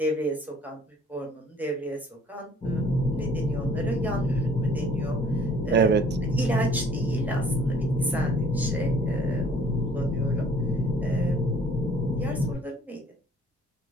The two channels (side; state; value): both; normal; correlation 0.56